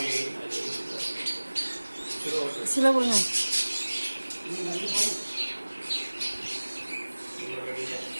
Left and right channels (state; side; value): inverted; both; correlation -1.00